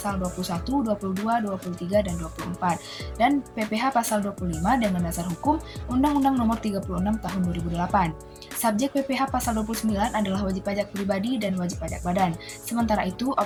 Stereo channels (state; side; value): identical; both; correlation 1.00